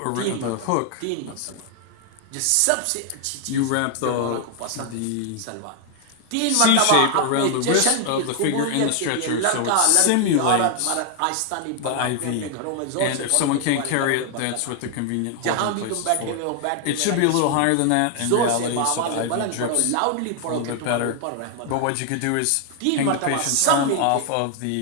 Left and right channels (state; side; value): different; both; correlation 0.00